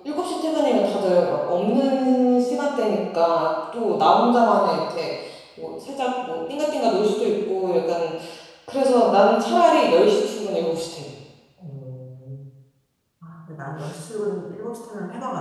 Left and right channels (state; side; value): identical; both; correlation 1.00